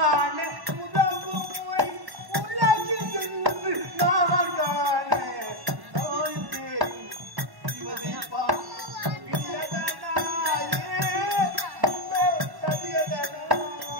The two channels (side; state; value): left; late; 1.1 ms